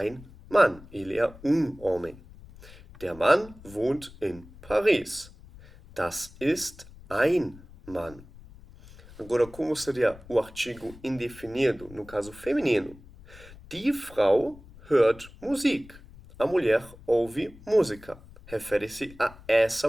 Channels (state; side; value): noise; left; rumble, 20 dB below the sound